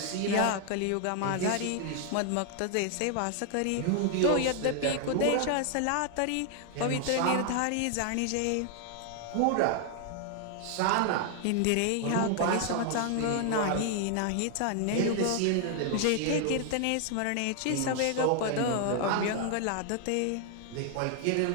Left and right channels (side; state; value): both; different; correlation 0.00